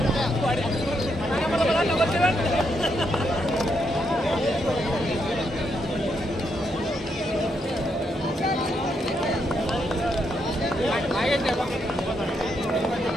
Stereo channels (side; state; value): both; normal; correlation 0.79